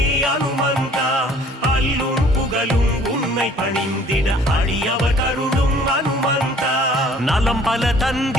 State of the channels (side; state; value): both; normal; correlation 0.55